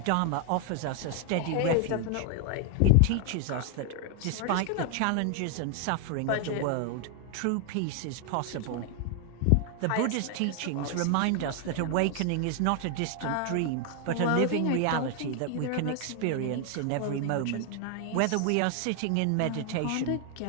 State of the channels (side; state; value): both; different; correlation 0.00